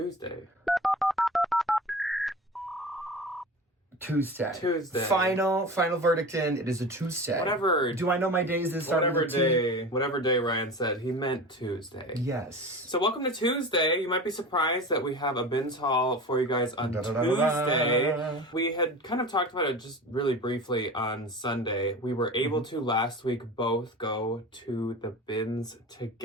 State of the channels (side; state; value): both; normal; correlation 0.33